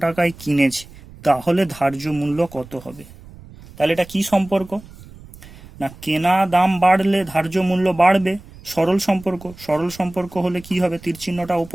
টাকায় কিনেছে, তাহলে ধার্য মূল্য কত হবে? তাহলে এটা কি সম্পর্ক না, কেনা দাম বাড়লে ধার্য মূল্য বাড়বে, সরল সম্পর্ক। সরল সম্পর্ক হলে কি হবে? তীর চিহ্নটা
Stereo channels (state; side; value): noise; right; rumble, 20 dB below the sound